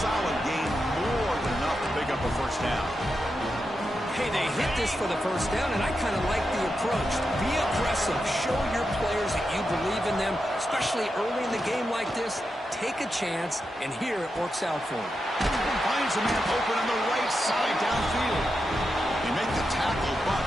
gain, more than enough to pick up a 1st down. Hey, they hit this for the 1st down, and I kind of like the approach. Be aggressive. Show your players that you believe in them, especially early in the game like this. Take a chance, and here it works out for him. Finds a man open on the right side downfield. They make the tackle, but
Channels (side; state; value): both; normal; correlation 0.88